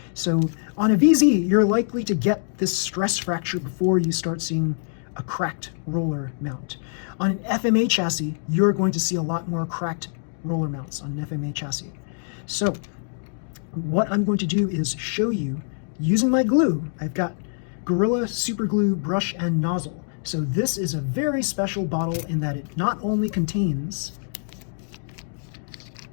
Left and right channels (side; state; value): right; silent; digital silence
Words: So on a VZ, you're likely to get this stress fracture before you start seeing a cracked roller mount. On an FMA chassis, you're going to see a lot more cracked roller mounts on an FMA chassis. So what I'm going to do is show you using my glue. I've got Gorilla Super Glue brush and nozzle. So this is a very special bottle in that it not only contains